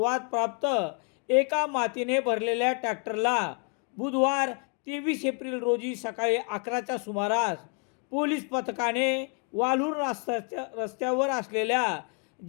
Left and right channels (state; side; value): quieter; right; 35.5 dB